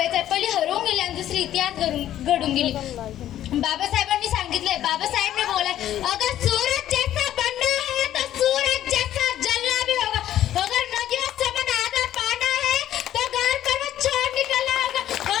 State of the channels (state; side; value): quieter; right; 12.1 dB